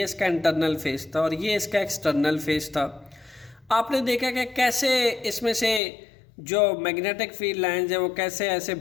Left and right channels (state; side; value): drops out; right; at 5.8 s